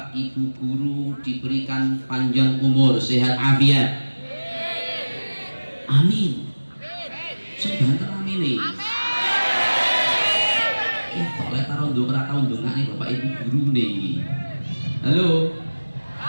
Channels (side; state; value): both; inverted; correlation -1.00